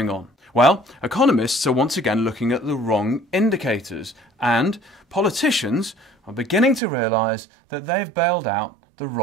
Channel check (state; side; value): drops out; left; at 6.8 s